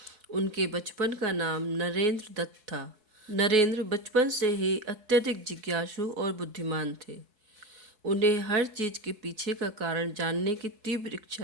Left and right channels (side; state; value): left; late; 4.7 ms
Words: उनके बचपन का नाम नरेंद्र दत्त था। नरेंद्र बचपन से ही अत्यधिक जिज्ञासु और बुद्धिमान थे। उन्हें हर चीज़ के पीछे का कारण जानने की तीव्र